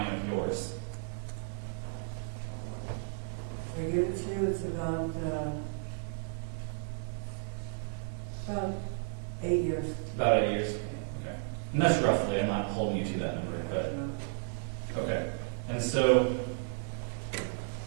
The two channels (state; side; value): silent; left; digital silence